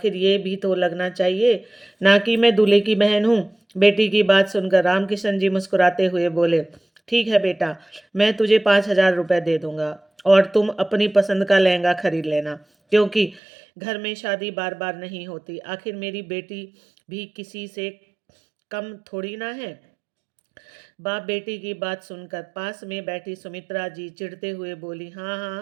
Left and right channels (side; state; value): left; drops out; at 13.4 s